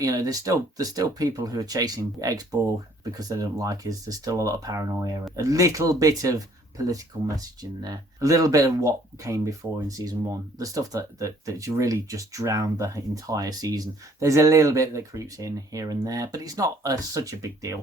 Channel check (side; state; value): both; normal; correlation 0.60